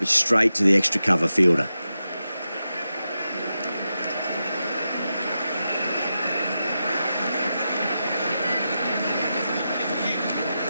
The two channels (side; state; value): both; inverted; correlation -0.90